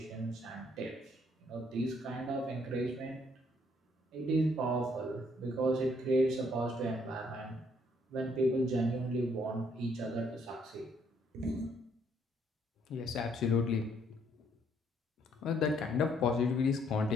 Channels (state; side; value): normal; both; correlation 0.68